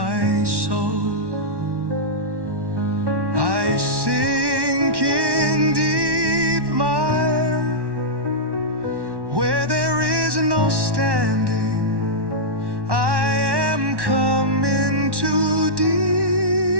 soul. I sink in deep mire, where there is no standing. I am come into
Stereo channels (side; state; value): left; late; 1.1 ms